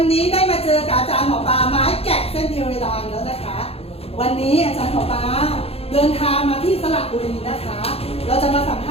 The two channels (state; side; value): late; right; 0.29 ms